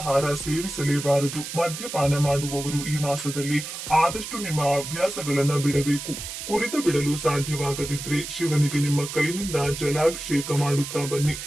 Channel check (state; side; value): noise; right; hiss, 8 dB below the sound